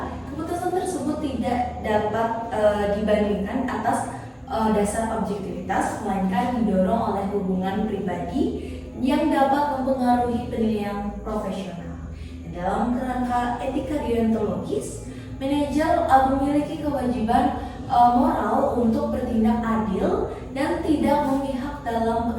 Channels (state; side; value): identical; both; correlation 1.00